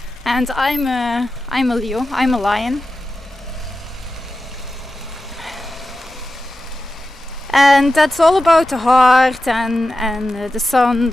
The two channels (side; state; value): both; normal; correlation 0.93